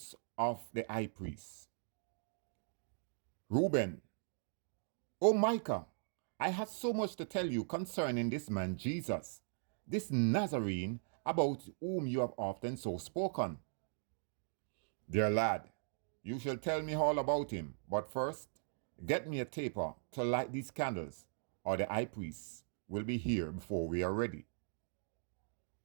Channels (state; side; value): silent; left; digital silence